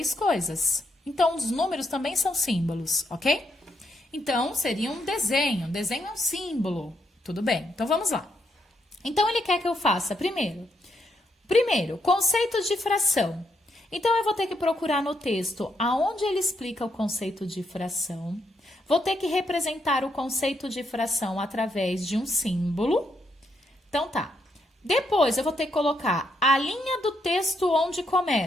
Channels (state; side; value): normal; both; correlation 0.78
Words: coisas. Então, os números também são símbolos, ok? Então, seria um desenho. Um desenho é um símbolo. Tudo bem, então vamos lá. Então, ele quer que eu faça primeiro, conceitos de fração. Então, eu vou ter que procurar no texto aonde ele explica o conceito de fração. Vou ter que representar o conceito de fração através de um símbolo. Então, tá. Depois, eu vou ter que colocar a linha do texto onde